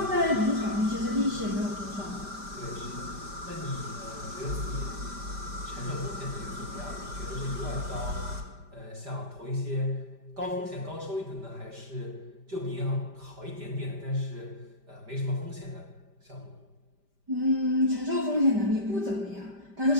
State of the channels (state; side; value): late; left; 5.0 ms